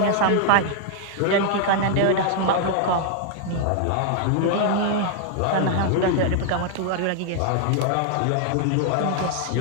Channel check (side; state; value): both; different; correlation 0.00